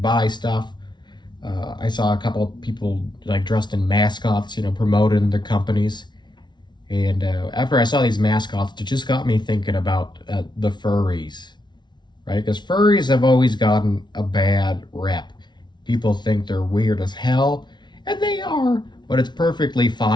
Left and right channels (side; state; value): right; late; 0.21 ms